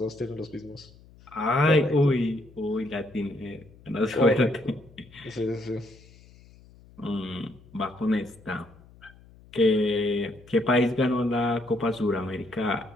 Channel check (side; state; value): left; noise; hum, 24 dB below the sound